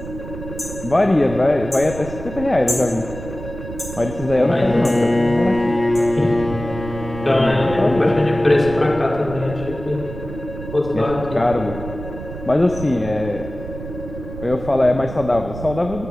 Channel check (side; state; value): right; noise; rumble, 11 dB below the sound